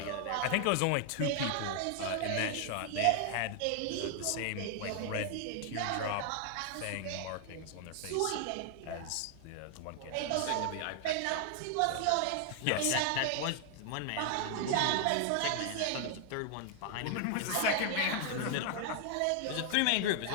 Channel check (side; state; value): both; different; correlation 0.00